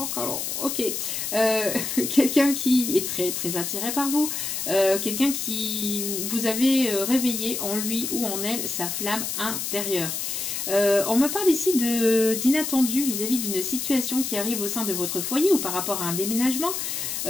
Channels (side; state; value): left; noise; hiss, 3 dB below the sound